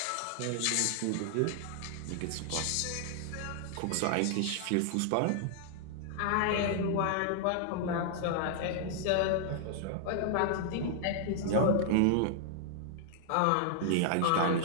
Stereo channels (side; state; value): both; different; correlation -0.01